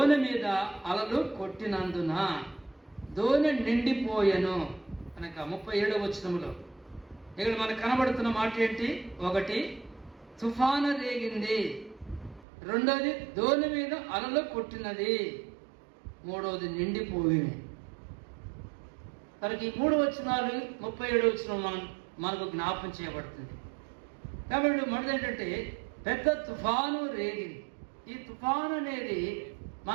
మీద అలలు కొట్టినందున దోణి నిండిపోయెను. కనుక 37వ వచనంలో ఇక్కడ మనకు కనబడుతున్న మాట ఏంటి? 1 తుఫాను రేగింది, 2వది దోణి మీద అలలు కొట్టినది, 3వది నిండిపోయింది. కనుక ఈ 3 వచనాలు 37వ వచనం మనకు జ్ఞాపకం చేయబడుతుంది. కాబట్టి మనది ఏంటంటే పెద్ద తుఫాను రేగింది. ఈ తుఫాను అనేది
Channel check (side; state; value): left; drops out; at 12.5 s